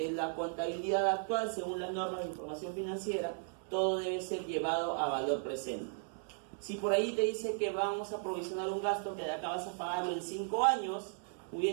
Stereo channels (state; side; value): silent; left; 54 dB below the other